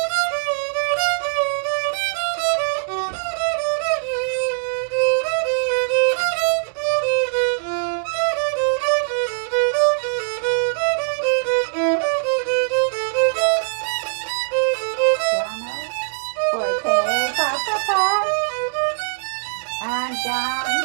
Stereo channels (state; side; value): silent; left; digital silence